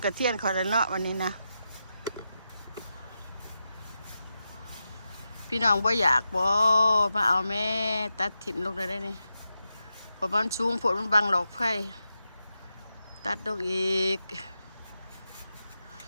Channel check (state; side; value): inverted; both; correlation -0.89